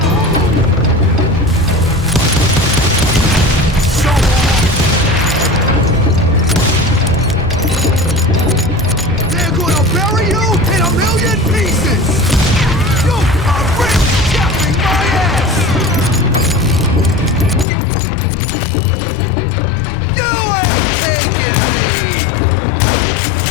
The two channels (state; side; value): drops out; right; at 17.7 s